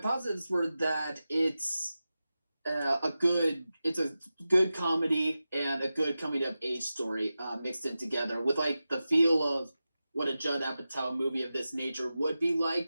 were that it's a good comedy and a good coming of age story mixed in together with like the feel of what a Judd Apatow movie of this nature would be like,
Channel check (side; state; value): both; inverted; correlation -0.94